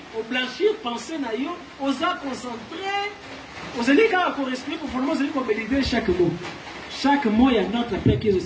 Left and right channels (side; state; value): both; identical; correlation 1.00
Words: au blanchir, penser naïo, aux a concentré, aux alliés quand on respire, pour former aux alliés qu'on valider chaque mot. Chaque mot, il y a notre Père qui est